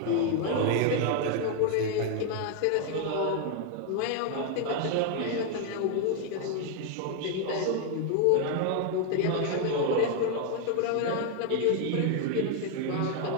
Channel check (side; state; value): both; different; correlation 0.00